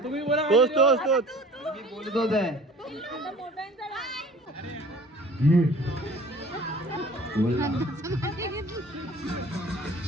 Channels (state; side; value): normal; both; correlation 0.48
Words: तुम्ही बोला तोच मी बोलतोच आहे. बोल ना.